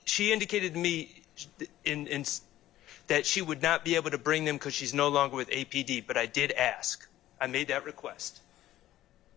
indicated to me that she would not be able to bring them because she's no longer with APD, but I did ask. I made that request.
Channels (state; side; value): quieter; right; 14.2 dB